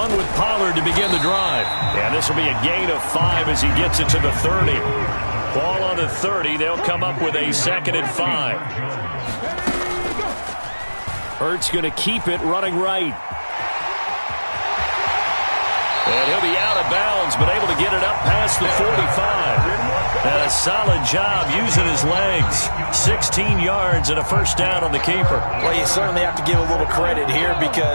with Pollard to begin the drive. And this will be a gain of 5 as he gets it to the 30. Ball on the 30. They'll come up with a 2nd and 5. Hurts going to keep it running right. And he'll be out of bounds, but able to get it up past the 45. And a solid job using his legs. 16 yards and a first down on the keeper. Well, you certainly have to give a little credit here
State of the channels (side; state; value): both; inverted; correlation -1.00